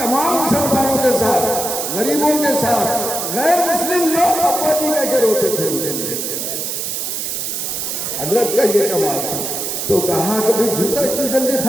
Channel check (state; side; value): noise; right; hiss, 3 dB below the sound